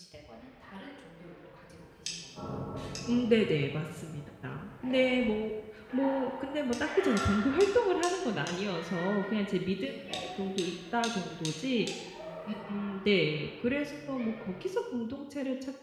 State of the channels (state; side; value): identical; both; correlation 1.00